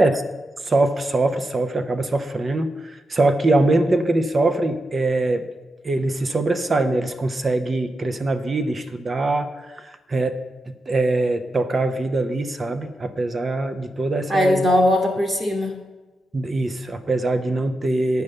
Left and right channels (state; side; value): normal; both; correlation 0.88